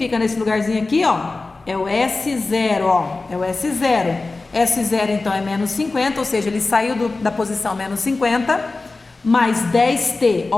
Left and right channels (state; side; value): quieter; right; 3.5 dB